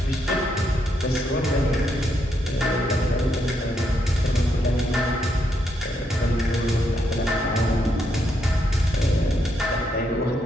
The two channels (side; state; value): both; normal; correlation 0.78